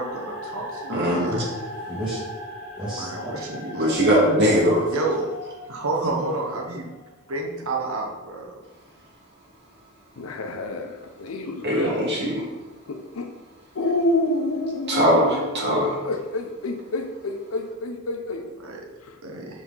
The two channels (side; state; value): both; normal; correlation 0.19